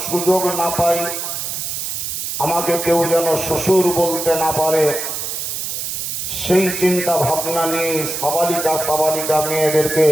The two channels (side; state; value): right; noise; hiss, 4 dB below the sound